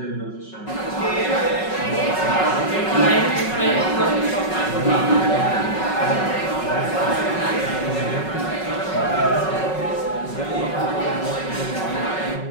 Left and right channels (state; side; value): late; right; 5.4 ms